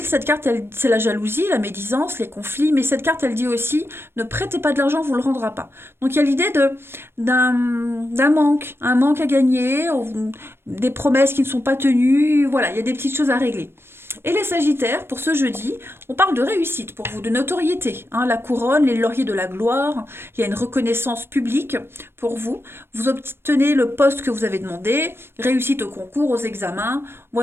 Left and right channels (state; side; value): late; left; 0.12 ms